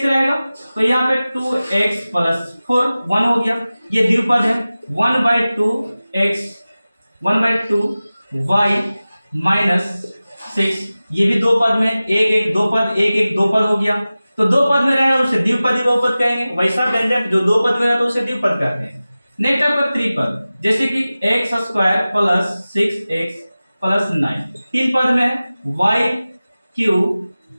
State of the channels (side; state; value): both; inverted; correlation -0.97